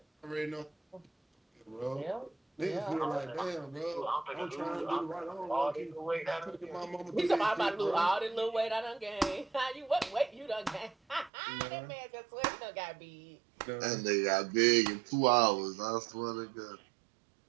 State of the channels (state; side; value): drops out; left; at 11.3 s